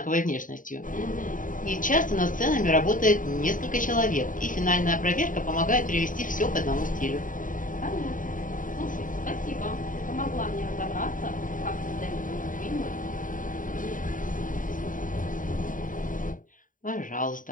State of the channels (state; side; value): late; right; 0.39 ms